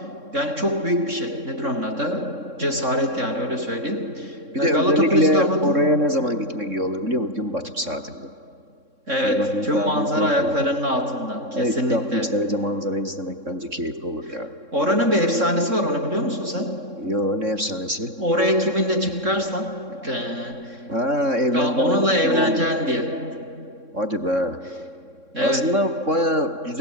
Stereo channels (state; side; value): late; left; 3.6 ms